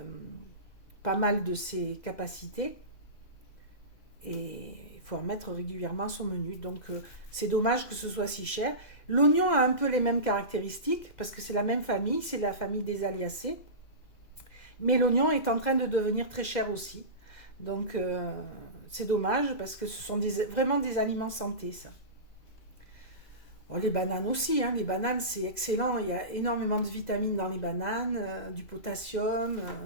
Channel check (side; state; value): right; late; 2.0 ms